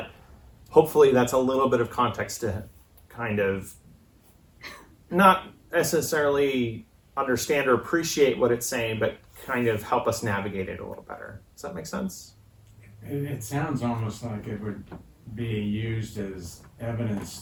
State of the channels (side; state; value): both; identical; correlation 1.00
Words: hopefully that's a little bit of context to kind of not necessarily understand or appreciate what it's saying, but kind of help us navigate it a little better. Does that make sense? It sounds almost like it would be used as evidence